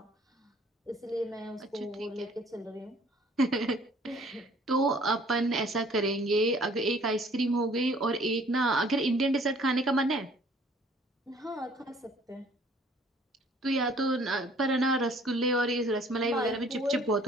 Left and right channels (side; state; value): both; normal; correlation 0.56